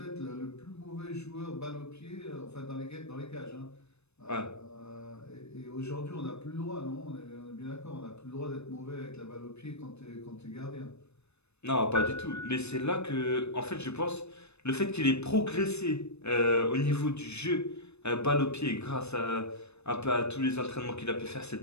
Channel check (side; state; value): right; late; 0.81 ms